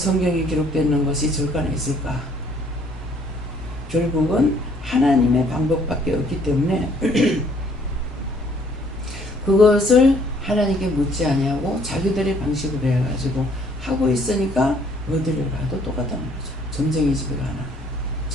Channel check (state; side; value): normal; both; correlation 0.62